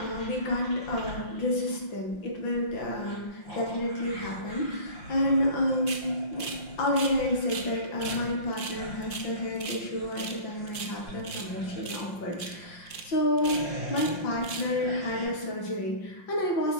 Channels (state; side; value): late; right; 5.7 ms